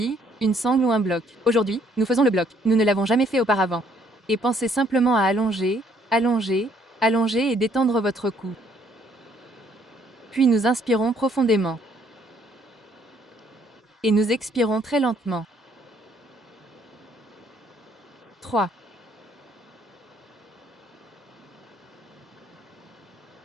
une sangle ou un bloc. Aujourd'hui, nous faisons le bloc. Nous ne l'avons jamais fait auparavant. Et pensez simplement à allonger, allonger, allonger et détendre votre cou. Puis nous inspirons profondément. Et nous expirons très lentement. 3.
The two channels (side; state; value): both; normal; correlation 0.65